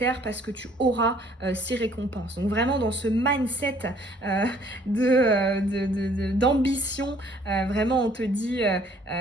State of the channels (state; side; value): normal; both; correlation 0.60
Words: parce que tu auras ces récompenses. Donc vraiment dans ce mindset d'ambition, vraiment on te dit